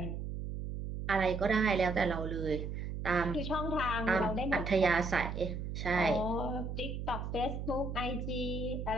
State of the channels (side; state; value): right; noise; hum, 5 dB below the sound